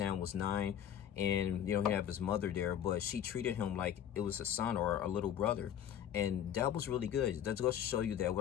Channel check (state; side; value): quieter; right; 9.9 dB